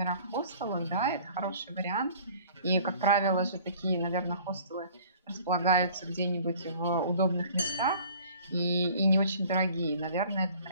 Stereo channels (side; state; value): both; inverted; correlation -0.50